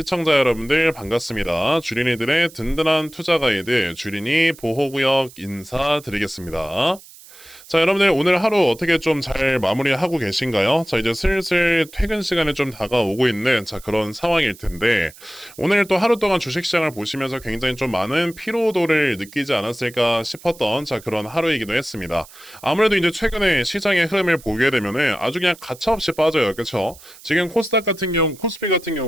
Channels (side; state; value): right; noise; hiss, 21 dB below the sound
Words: 여러분들 반갑습니다. 주린이들의 든든한 투자 가이드, 주린이 보호구역 인사드리겠습니다. 자, 여러분들 오늘 하루 어떻게 좀 잘 마무리하고 계신가요? 자, 이제 슬슬 퇴근 시간에 좀 다가오고 있는 그런 상황일 텐데 오늘 또 하루 동안 주식시장을 보시면서 굉장히 좀 많은 피로도를 느끼지 않았을까 싶었던 그런 하루이기도 했습니다. 아무래도 이제 최근에 시장의 흐름을 보게 되면은 아주 그냥 가차없이 빠져요. 그렇죠? 지금 코스닥 같은 경우, 코스피 같은